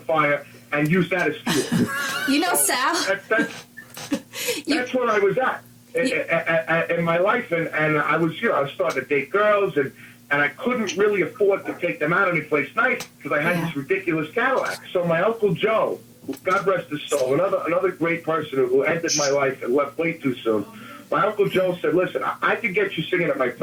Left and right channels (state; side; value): identical; both; correlation 1.00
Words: and use that as fuel. You know, Sal. That's where I was at. In my life, and I was starting to date girls, and I couldn't really afford to take them out anyplace nice because I had this ridiculous Cadillac. So my Uncle Joe, God rest his soul, another great person who entered my life and left way too soon. My Uncle Joe said, listen, I could get you singing at my